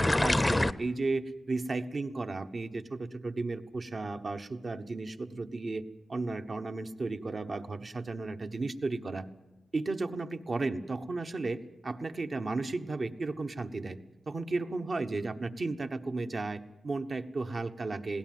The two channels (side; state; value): both; normal; correlation 0.96